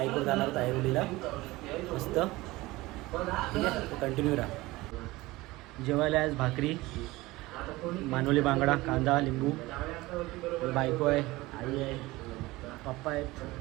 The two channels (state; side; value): quieter; left; 20.0 dB